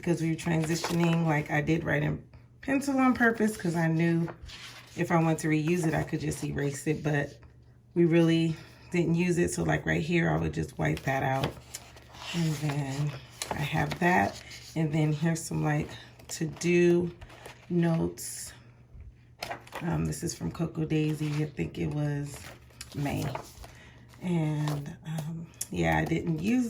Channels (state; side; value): identical; both; correlation 1.00